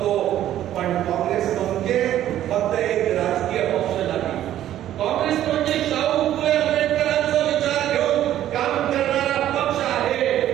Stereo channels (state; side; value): quieter; left; 12.2 dB